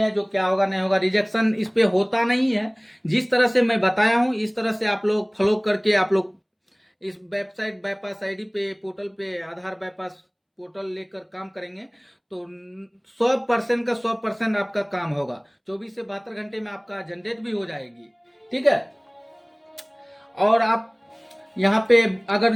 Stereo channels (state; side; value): identical; both; correlation 1.00